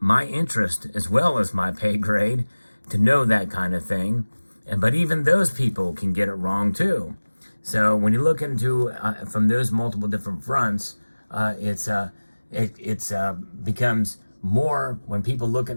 interest as well as my pay grade to know that kind of thing. But even those people can get it wrong too. So when you look into from those multiple different fronts, it becomes more when people look at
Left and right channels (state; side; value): inverted; both; correlation -1.00